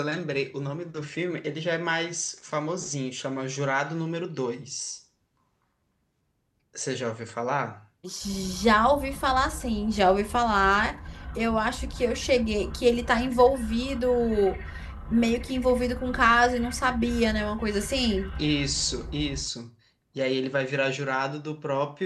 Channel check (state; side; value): identical; both; correlation 1.00